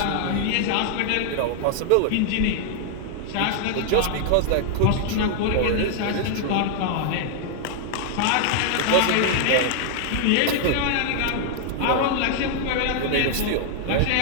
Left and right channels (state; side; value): different; both; correlation -0.01